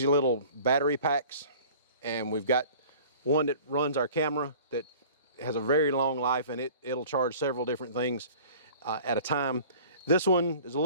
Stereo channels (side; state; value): both; inverted; correlation -0.46